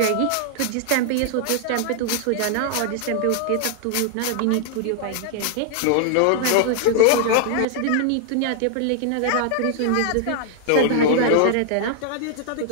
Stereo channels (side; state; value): both; different; correlation 0.00